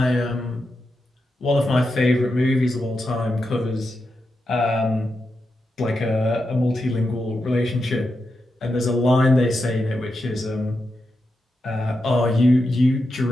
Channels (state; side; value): normal; both; correlation 0.87